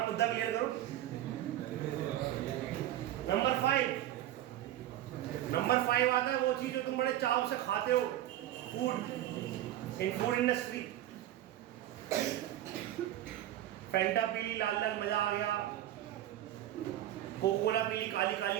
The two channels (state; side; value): quieter; left; 13.1 dB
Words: मुद्दा क्लियर करो। नंबर 5 आता है वो चीज जो तुम बड़े चाव से खाते हो, फूड, इन फूड इंडस्ट्री। फैंटा पीली लाल लाल मजा आ गया, कोको कोला पीली काली